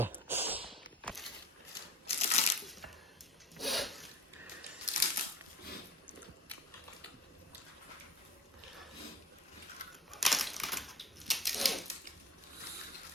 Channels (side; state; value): both; normal; correlation 0.35